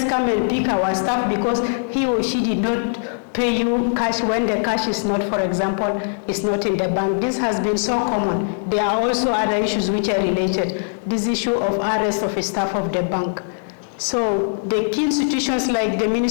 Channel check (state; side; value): silent; right; digital silence